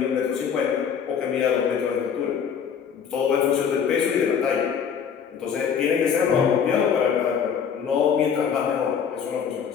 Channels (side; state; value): right; quieter; 7.3 dB